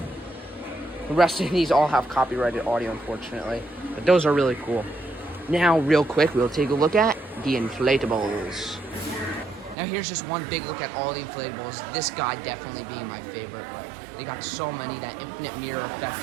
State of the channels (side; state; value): left; drops out; at 9.8 s